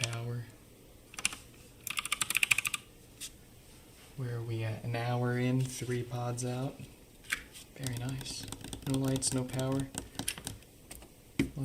power. Where are we at? An hour in, 3 pods out. Very nice. No lights, no power.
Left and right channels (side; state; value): both; identical; correlation 1.00